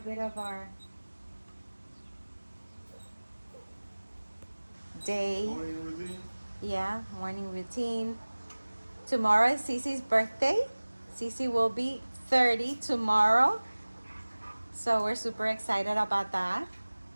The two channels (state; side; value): inverted; both; correlation -1.00